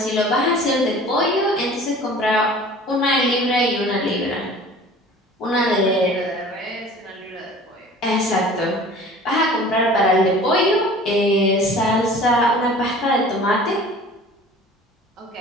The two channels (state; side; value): normal; both; correlation 0.45